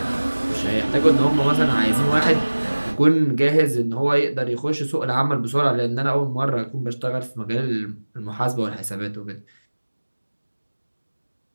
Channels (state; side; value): inverted; both; correlation -1.00